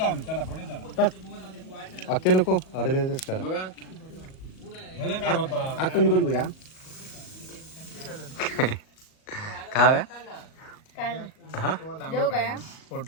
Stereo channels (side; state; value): right; late; 38 ms